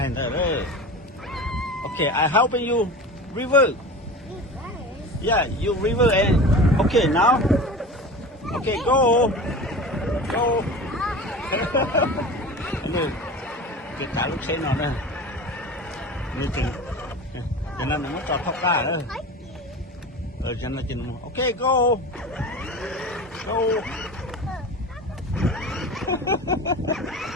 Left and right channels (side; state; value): both; normal; correlation 0.33